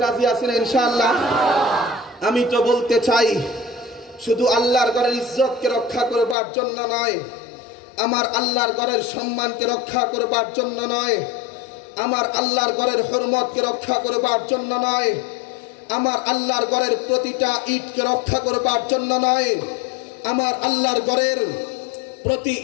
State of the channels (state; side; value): drops out; right; at 6.4 s